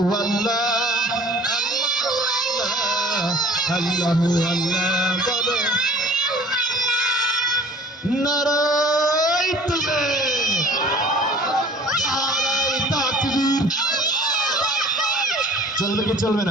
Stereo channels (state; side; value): normal; both; correlation 0.48